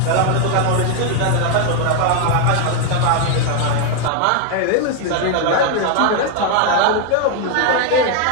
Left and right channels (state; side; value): different; both; correlation 0.00